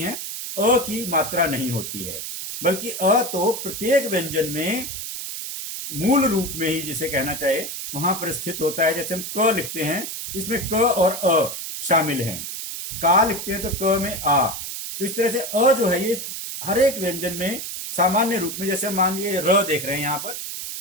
अ की मात्रा नहीं होती है, बल्कि अ तो प्रत्येक व्यंजन में मूल रूप में ही, जिसे कहना चाहे, वहां पर स्थित होता है। जैसे हम क लिखते हैं, इसमें क और अ शामिल हैं। का लिखते हैं तो क में आ। तो इस तरह से अ जो है ये हर एक व्यंजन में सामान्य रूप में, जैसे मान लीजिए र देख रहे हैं यहाँ पर,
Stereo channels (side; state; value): right; noise; hiss, 6 dB below the sound